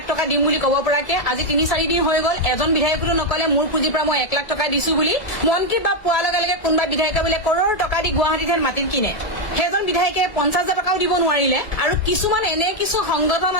টকা দিম বুলি ক'ব পৰাকে আজি 3-4 দিন হৈ গ'ল এজন বিধায়কটো নকলে মোৰ পুঁজিৰ পৰা মই 1 লাখ টকা দিছো বুলি মন্ত্ৰী বা পোৱাৰ লগে লগে কোনোবা বিধায়কে বোলে কৰোৰ টকা দি গুৱাহাটীত মাটি কিনে সেইজন বিধায়কে 50,000 টকাও দিব নোৱাৰিলে আৰু কিছুমান এনে কিছু সংগঠন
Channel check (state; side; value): late; right; 1.7 ms